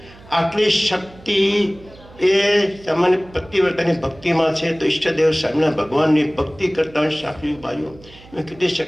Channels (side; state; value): right; noise; hum, 22 dB below the sound